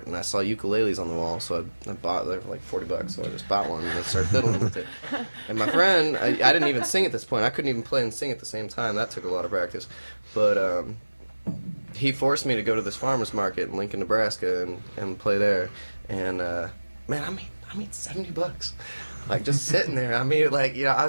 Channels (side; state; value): both; inverted; correlation -1.00